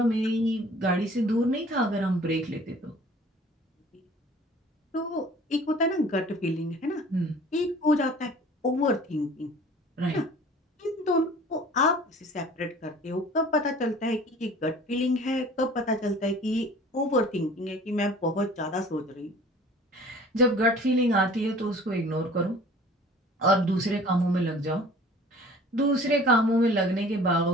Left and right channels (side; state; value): both; normal; correlation 0.48